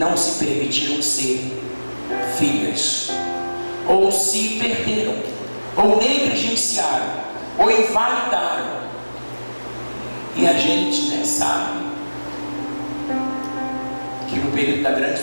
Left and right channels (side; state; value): both; inverted; correlation -1.00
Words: se permitiram ser filhas, ou se perderam, ou negligenciaram, ou invalidaram. E a gente, né, sabe que no período da grande